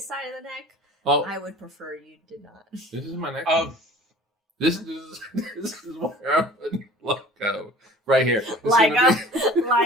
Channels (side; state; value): both; normal; correlation 0.45